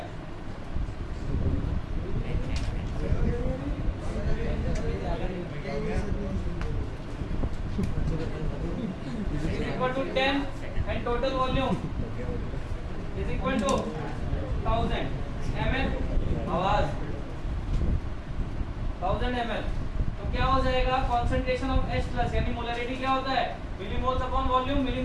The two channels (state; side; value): identical; both; correlation 1.00